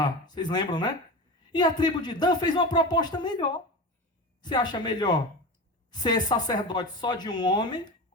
Vocês lembram, né? E a tribo de Dan fez uma proposta melhor. Você acha melhor ser sacerdote só de um homem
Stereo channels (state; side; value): normal; both; correlation 0.26